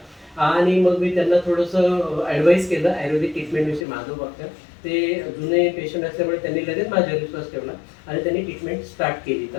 आणि मग मी त्यांना थोडंसं ॲडवाईस केलं आयुर्वेदिक ट्रीटमेंटविषयी. माधव ते जुने पेशंट असल्यामुळे त्यांनी लगेच माझ्यावर विश्वास ठेवला आणि त्यांनी ट्रीटमेंट स्टार्ट केली.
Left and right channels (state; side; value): drops out; right; at 3.9 s